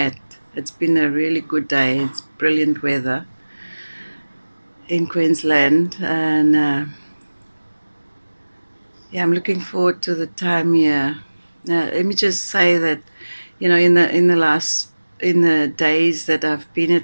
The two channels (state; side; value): inverted; both; correlation -1.00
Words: It's been a really good day. It's brilliant weather in Queensland, and yeah, I'm looking forward to the time here. Let me just say that, in the days that I've been